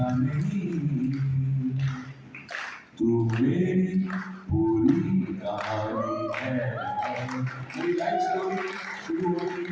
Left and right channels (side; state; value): both; identical; correlation 1.00